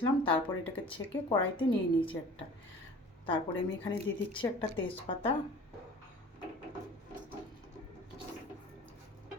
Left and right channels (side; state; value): both; normal; correlation 0.44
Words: তারপর এটাকে ছেঁকে কড়াইতে নিয়ে নিয়েছি একটা। তারপরে আমি এখানে দিয়ে দিচ্ছি একটা তেজপাতা,